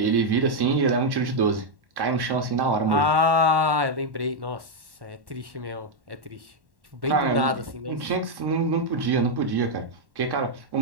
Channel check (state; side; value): late; left; 1.1 ms